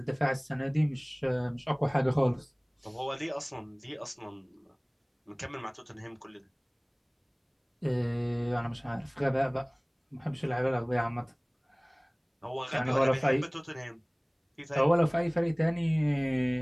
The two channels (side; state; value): both; identical; correlation 1.00